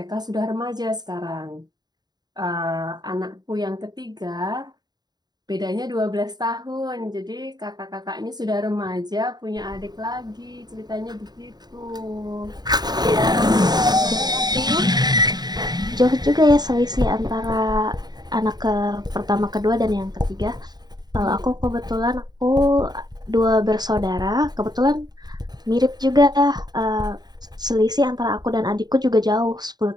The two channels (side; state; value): left; late; 0.20 ms